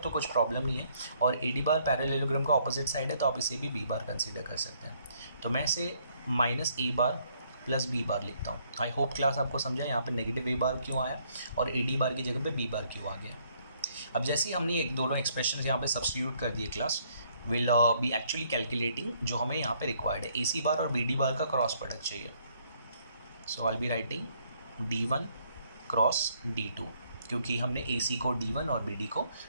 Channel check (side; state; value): both; inverted; correlation -0.67